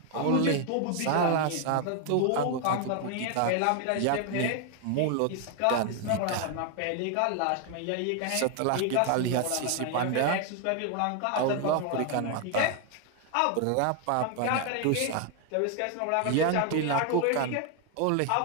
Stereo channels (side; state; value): both; different; correlation 0.00